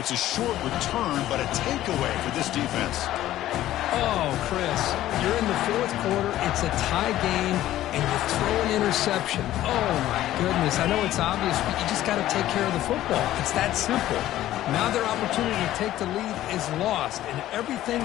a short return, but a takeaway for this defense. Oh, Chris, you're in the fourth quarter. It's a tie game, and you throw an interception. Oh, my goodness. I know it's obvious, but you just got to take care of the football. It's that simple. Now their opportunity to take the lead is lost, and everything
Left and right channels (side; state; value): right; quieter; 13.9 dB